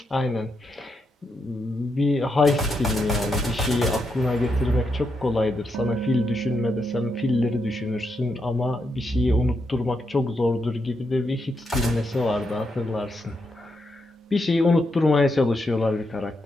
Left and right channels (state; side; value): normal; both; correlation 0.82